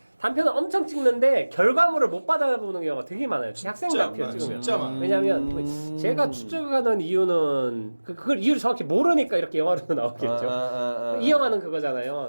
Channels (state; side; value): inverted; both; correlation -1.00